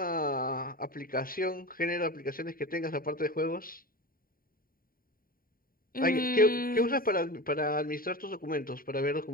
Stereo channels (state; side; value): late; right; 0.42 ms